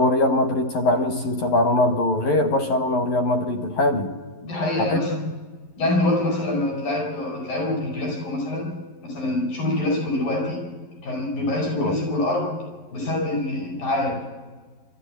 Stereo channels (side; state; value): right; late; 11 ms